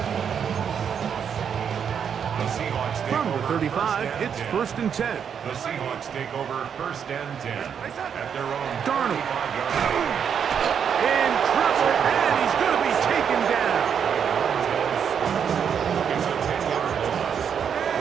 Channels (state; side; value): quieter; left; 7.6 dB